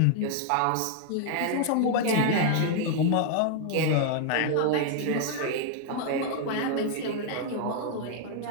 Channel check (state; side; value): different; both; correlation 0.00